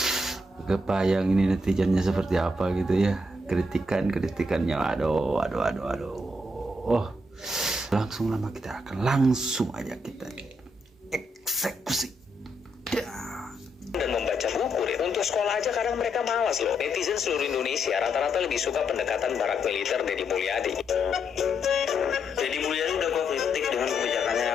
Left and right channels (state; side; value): normal; both; correlation 0.78